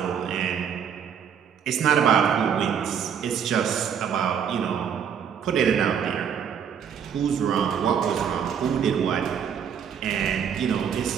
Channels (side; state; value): left; quieter; 7.9 dB